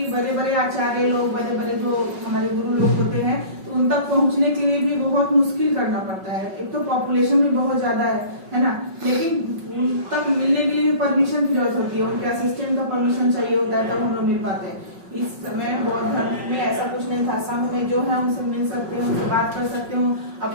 बड़े बड़े आचार्य लोग, बड़े बड़े जो हमारे गुरु लोग होते हैं, तो उन तक पहुंचने के लिए भी बहुत मुश्किल करना पड़ता है। एक तो पॉपुलेशन भी बहुत ज्यादा है ना, लेकिन उन तक मिलने के लिए भी परमिशन की जरूरत होती है, उनके असिस्टेंट का परमिशन चाहिए होता है, तब हम लोग मिल पाते हैं। इस समय बौद्ध धर्म में ऐसा कुछ नहीं था, संघ में जो है उनसे मिल सकते हैं, उनसे बात कर सकते हो,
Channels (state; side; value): late; left; 5.4 ms